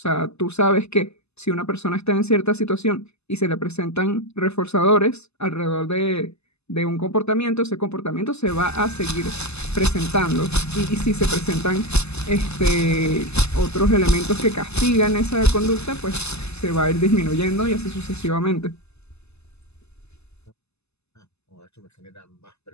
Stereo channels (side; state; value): right; late; 0.80 ms